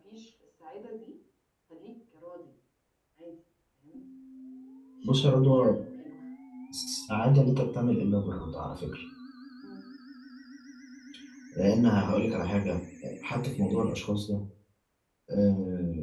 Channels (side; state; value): both; identical; correlation 1.00